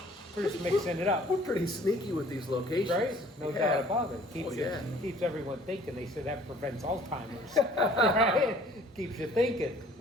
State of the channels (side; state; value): both; normal; correlation 0.54